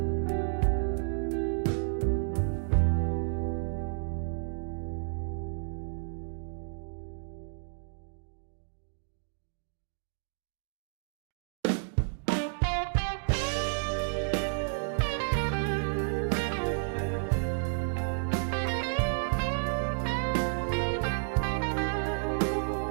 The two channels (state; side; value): silent; left; digital silence